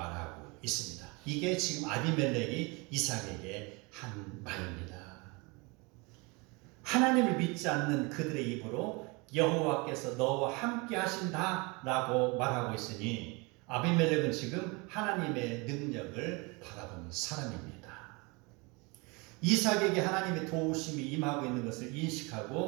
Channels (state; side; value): quieter; left; 27.9 dB